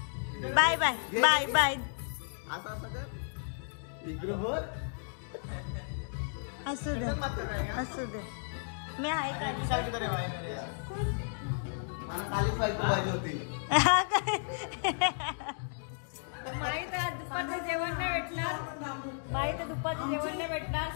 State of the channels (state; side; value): silent; right; digital silence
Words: Bye bye bye bye. असं असं कर इकडं बोल. असू दे असू दे. मी आहे का? मला खालीच पाहिजे होती. माहित आहे दुपारचं जेवण नाही भेटणार. माहित आहे दुपारचं जेवण नाही भेटणार.